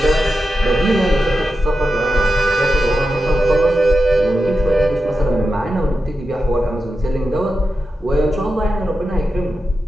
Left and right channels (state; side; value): normal; both; correlation 0.90